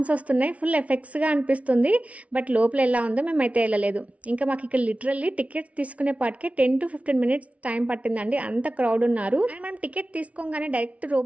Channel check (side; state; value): left; late; 0.065 ms